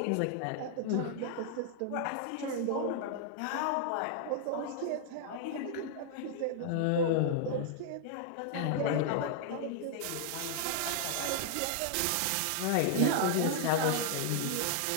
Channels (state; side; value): different; both; correlation 0.00